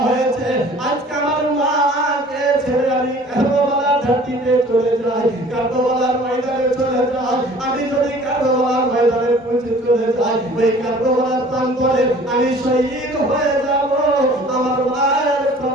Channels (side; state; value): both; normal; correlation 0.49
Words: হয়েছে। আজকে আমার মাকে ছেড়ে আমি কারবালার ঘাটিতে চলে যাই, কারবালার ময়দানে চলে যাই। আমি যদি কারবালার ময়দানে পৌঁছে চলে যাই, ওই কারবালার প্রান্তরে আমি শহীদ হয়ে যাব। আমার মায়ের